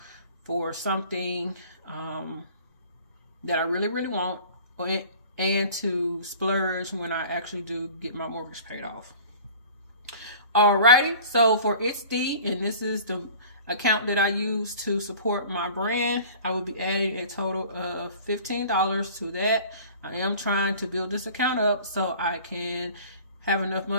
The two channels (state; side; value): inverted; both; correlation -0.45